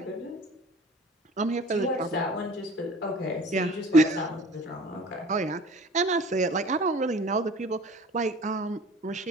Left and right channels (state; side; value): normal; both; correlation 0.45